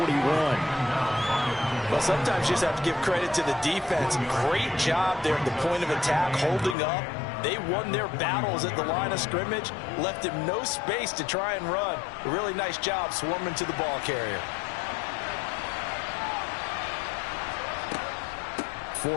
Well, sometimes you just have to give credit to the defense. Great job there at the point of attack, holding up. They won their battles at the line of scrimmage, left him no space to try and run. A really nice job swarming to the ball carrier.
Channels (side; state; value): right; drops out; at 6.8 s